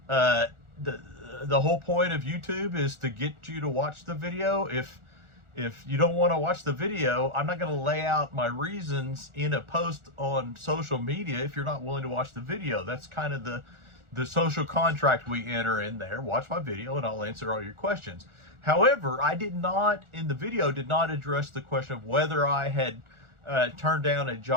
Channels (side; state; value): left; late; 1.4 ms